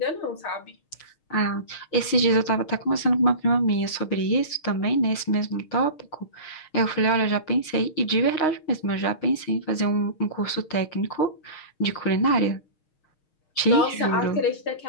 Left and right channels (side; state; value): right; late; 6.5 ms